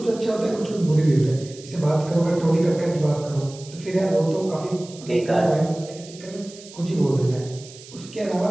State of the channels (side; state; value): right; noise; hiss, 19 dB below the sound